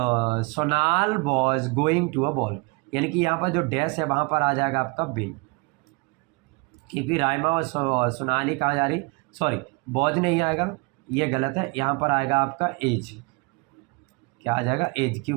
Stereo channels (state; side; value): quieter; left; 29.1 dB